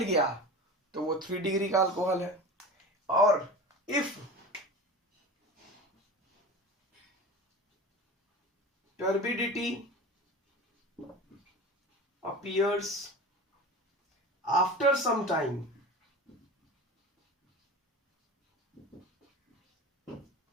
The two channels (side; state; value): both; normal; correlation 0.32